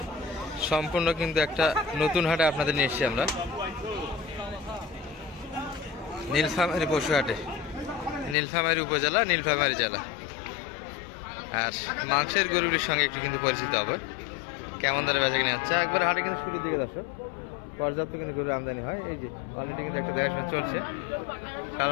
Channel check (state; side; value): drops out; right; at 8.3 s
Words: সম্পূর্ণ কিন্তু একটা নতুন হাটে আপনাদের নিয়ে এসেছি আমরা, নীলফামারী পশু হাটে, নীলফামারী উপজেলা, নীলফামারী জেলা। আর মাংসের গরুটির সঙ্গে একটু কিন্তু পরিচিত হবে, কেমন ধরে বেচা কিনে হচ্ছে। একবার হাটে কিন্তু শুরুর দিকে দর্শক পর্যাপ্ত কিন্তু গরু আমদানি হয়। এই যে অলরেডি কিন্তু একটা দেখাশোনা চলছে,